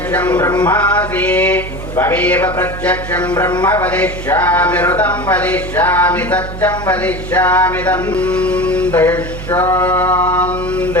ब्रह्मासि त्वमेव प्रत्यक्षं ब्रह्म वदिष्यामि ऋतं वदिष्यामि सत्यं वदिष्यामि तं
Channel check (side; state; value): right; noise; hum, 9 dB below the sound